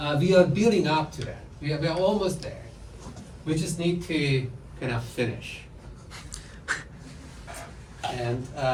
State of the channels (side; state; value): both; identical; correlation 1.00